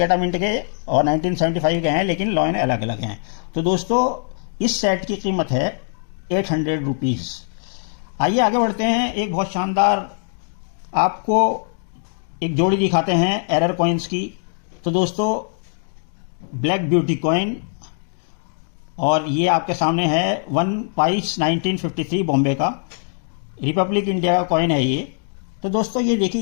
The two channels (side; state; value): right; silent; 59 dB below the other